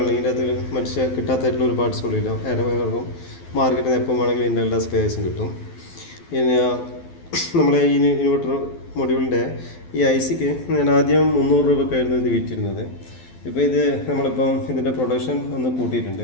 ഇതിൻ്റെ അകത്ത് മനുഷ്യ കിട്ടാത്തായിട്ടുള്ള ഒരു പാർട്സുകളില്ല. എല്ലാവർക്കും മാർക്കറ്റിൽ നിന്ന് എപ്പോൾ വേണമെങ്കിലും ഇതിൻ്റെ എല്ലാ സ്പെയർസും കിട്ടും. പിന്നെ നമ്മളെ ഈ ഇൻവെർട്ടർ മൊഡ്യൂളിൻ്റെ ഈ ICക്ക് ഞാൻ ആദ്യം 300 രൂപക്കായിരുന്നു ഇത് വിറ്റിരുന്നത്. ഇപ്പോൾ ഇത് നമ്മളിപ്പം ഇതിൻ്റെ പ്രൊഡക്ഷൻ ഒന്ന്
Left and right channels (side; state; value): right; late; 12 ms